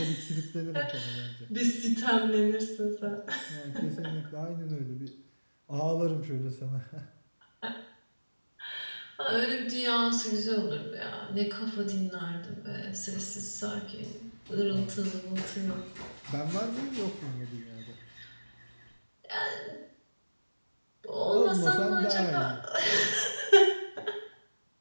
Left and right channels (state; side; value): inverted; both; correlation -1.00